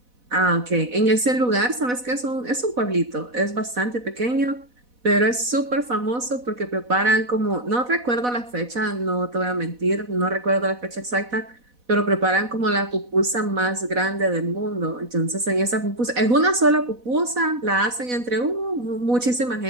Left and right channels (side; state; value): left; late; 4.1 ms